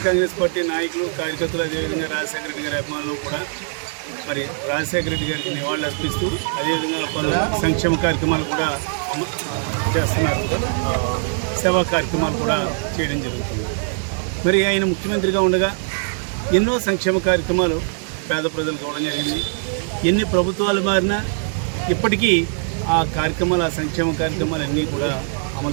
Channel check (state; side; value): silent; left; 61 dB below the other